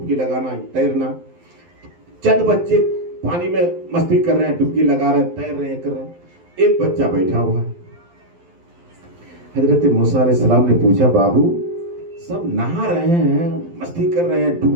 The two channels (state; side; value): late; left; 12 ms